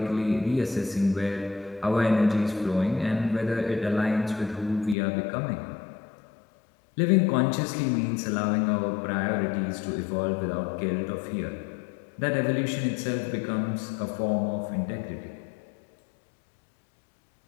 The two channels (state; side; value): drops out; right; at 5.0 s